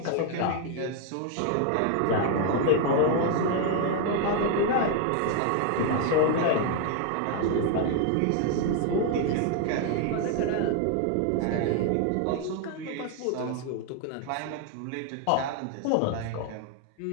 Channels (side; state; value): both; different; correlation 0.01